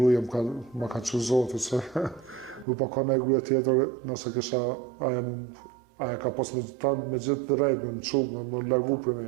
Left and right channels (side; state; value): left; drops out; at 2.7 s